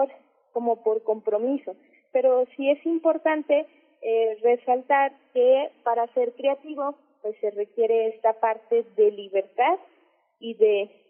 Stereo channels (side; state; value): both; identical; correlation 1.00